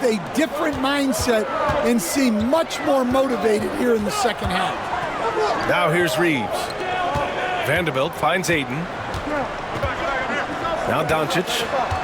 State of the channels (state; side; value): identical; both; correlation 1.00